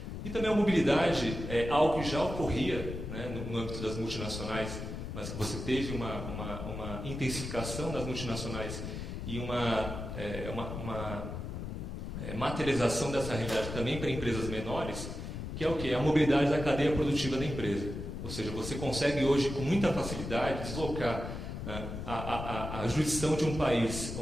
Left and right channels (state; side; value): noise; left; rumble, 7 dB below the sound